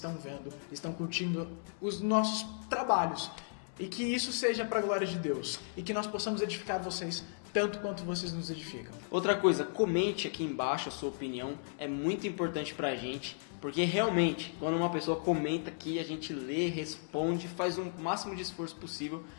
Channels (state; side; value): silent; right; digital silence